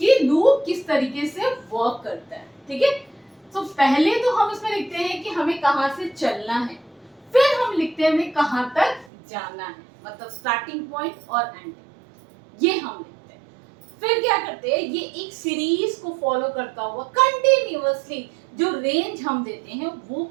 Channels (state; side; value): drops out; left; at 9.1 s